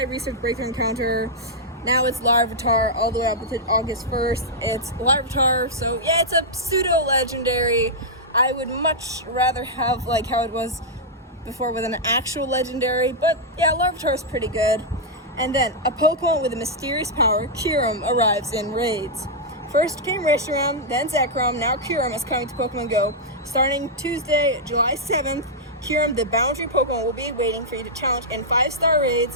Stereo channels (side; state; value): both; normal; correlation -0.07